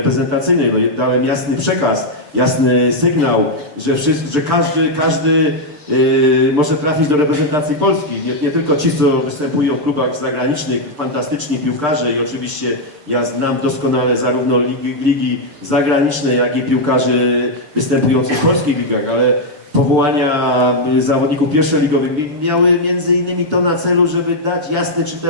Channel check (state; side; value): late; left; 6.7 ms